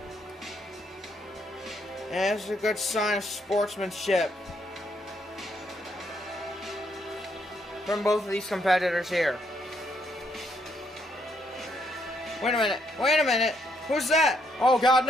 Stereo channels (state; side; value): normal; both; correlation 0.73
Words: And it's a good sign of sportsmanship from both of these competitors here. Wait a minute, who's that? Oh God,